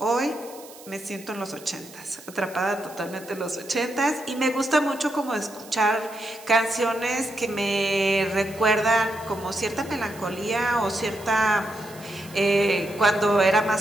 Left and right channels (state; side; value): noise; right; hiss, 19 dB below the sound